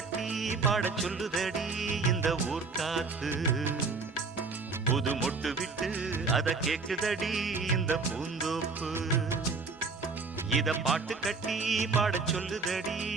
பாட சொல்லுதடி இந்த ஊர் காத்து புது மொட்டு விட்டு அத கேக்குதடி இந்த பூந்தோப்பு இத பாட்டு கட்டி பாட சொல்லுதடி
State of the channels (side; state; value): left; quieter; 4.3 dB